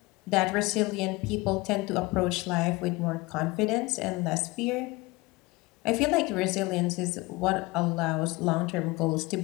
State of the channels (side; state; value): right; quieter; 22.6 dB